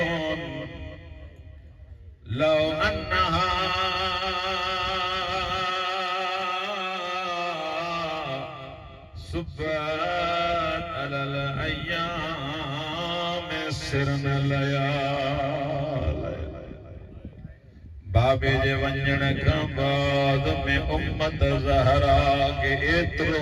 लौ अन्नहा सुब्बत अलल अय्याम सिरन लयाल। बाबे जे वंजण खां बाद में उम्मत ज़हरा के एतिरो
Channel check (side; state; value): both; identical; correlation 1.00